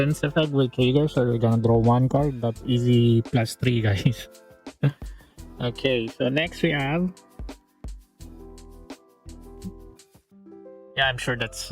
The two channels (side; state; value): both; identical; correlation 1.00